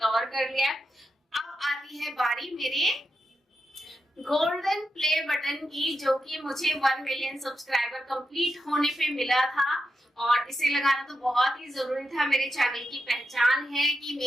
कर लिया। अब आती है बारी मेरे गोल्डन प्ले बटन की, जो कि मुझे 1 मिलियन सब्सक्राइबर कंप्लीट होने पे मिला था, और इसे लगाना तो बहुत ही जरूरी था। मेरे चैनल की पहचान है कि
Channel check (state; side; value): normal; both; correlation 0.87